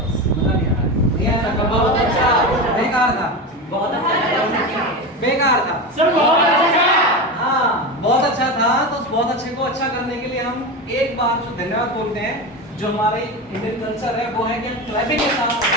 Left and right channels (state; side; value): normal; both; correlation 0.21